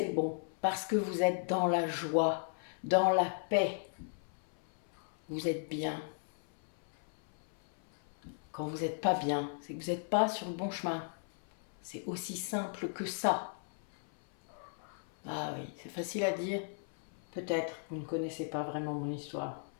le bon, parce que vous êtes dans la joie, dans la paix. Vous êtes bien. Quand vous n'êtes pas bien, c'est que vous n'êtes pas sur le bon chemin. C'est aussi simple que ça. Ah oui, c'est facile à dire. Peut-être, vous ne connaissez pas vraiment mon histoire,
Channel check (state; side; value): silent; right; 53 dB below the other